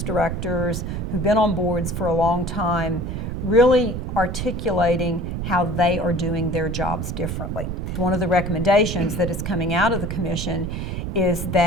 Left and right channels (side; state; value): right; noise; rumble, 4 dB below the sound